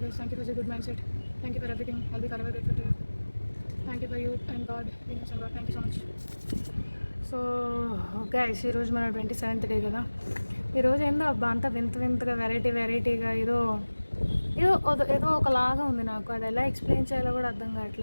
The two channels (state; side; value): inverted; both; correlation -1.00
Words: Thank you for this good mindset. Thank you for everything. I'll be forever grateful to you. Thank you for you and God, universe and God. Thank you so much. So guys, ఈరోజు మన 27th day కదా. ఈరోజు ఏందో అబ్బా అంతా వింతగా వెరైటీగా ఏదో ఒకలాగా ఉంది నాకు. అది ఎలా ఎక్స్ప్లెయిన్ చేయాలో కూడా అర్థం